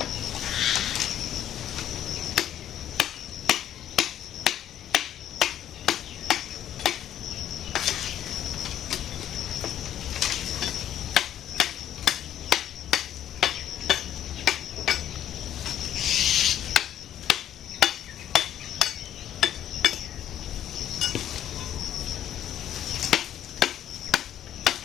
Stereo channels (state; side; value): quieter; right; 11.0 dB